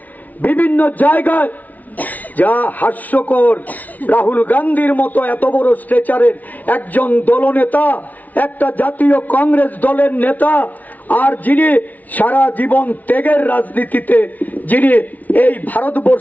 বিভিন্ন জায়গায়। যা হাস্যকর, রাহুল গান্ধীর মতো এত বড় স্ট্রেচারের একজন দলনেতা, একটা জাতীয় কংগ্রেস দলের নেতা, আর যিনি সারা জীবন ত্যাগের রাজনীতিতে যিনি এই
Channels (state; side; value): late; right; 0.075 ms